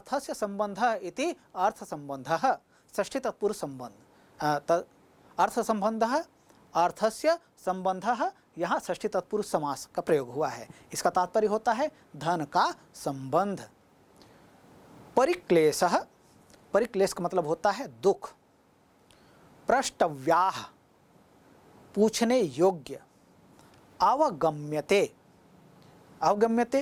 संबंधः इति अर्थ संबंधः, षष्ठी तत्पुरुष संबंध। अर्थ संबंधः अर्थस्य संबंधः, यहाँ षष्ठी तत्पुरुष समास का प्रयोग हुआ है। इसका तात्पर्य होता है धन का संबंध। परिक्लेशः, परिक्लेश का मतलब होता है दुख। प्रष्टव्याः, पूछने योग्य। अवगम्यते,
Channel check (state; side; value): identical; both; correlation 1.00